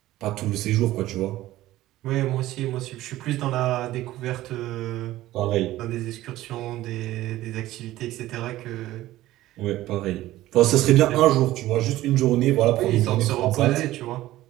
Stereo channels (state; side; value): quieter; left; 15.7 dB